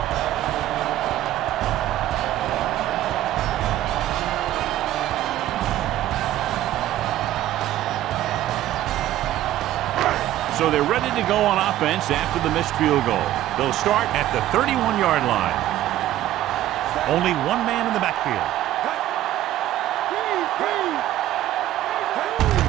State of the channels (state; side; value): quieter; left; 13.6 dB